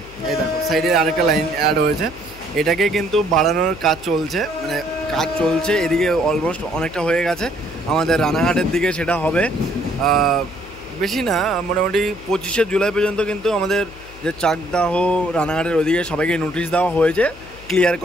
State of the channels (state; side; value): noise; left; hum, 19 dB below the sound